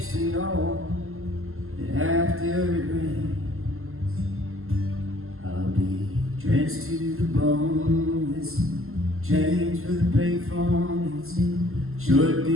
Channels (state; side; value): late; left; 0.62 ms